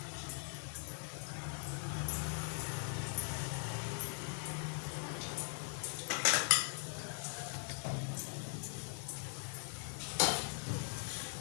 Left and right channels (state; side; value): silent; right; 50 dB below the other